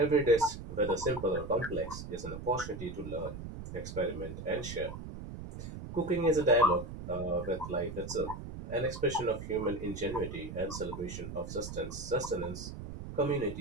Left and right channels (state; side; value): noise; right; rumble, 9 dB below the sound